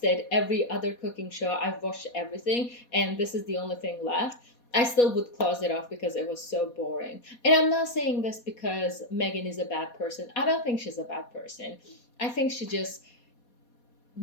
every other cooking show, I've watched everything, and this is the only thing left, I still would close it off because it was so boring. And I'm not saying this because Meghan is a bad person. I don't think she's a bad person. I think she just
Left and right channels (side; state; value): right; late; 4.2 ms